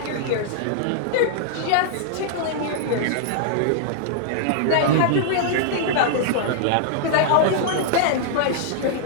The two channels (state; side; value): different; both; correlation -0.01